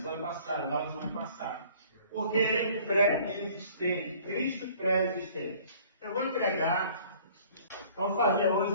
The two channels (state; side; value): inverted; both; correlation -0.53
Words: passada. Porque pré-existente, Cristo pré-existente. Eu vou vamos fazer hoje